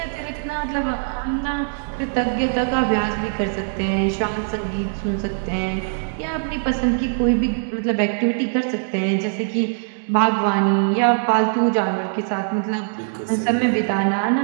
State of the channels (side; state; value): left; silent; digital silence